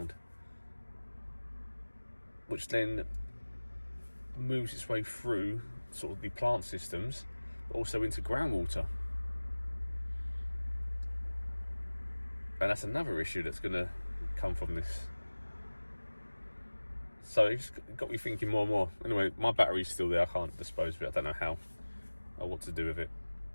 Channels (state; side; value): inverted; both; correlation -1.00